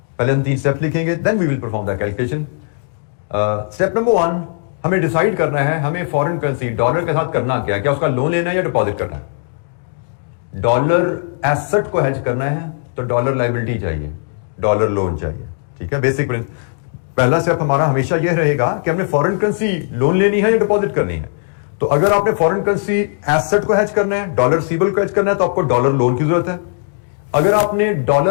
पहले हम 3 स्टेप लिखेंगे, then we will perform the calculation. Step number 1, हमें डिसाइड करना है हमें फॉरेन करेंसी डॉलर के साथ करना क्या उसका लोन लेना है या डिपॉजिट करना है। डॉलर एसेट को हेज करना है तो डॉलर लायबिलिटी चाहिए, डॉलर लोन चाहिए। ठीक है, बेसिक पहला स्टेप हमारा हमेशा यह रहेगा कि हमने फॉरेन करेंसी लोन लेनी है या डिपॉजिट करनी है। तो अगर आपने फॉरेन करेंसी एसेट को हेज करना है, डॉलर रिसीवेबल को हेज करना है, तो आपको डॉलर लोन की जरूरत है। अगर आपने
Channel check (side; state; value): right; silent; digital silence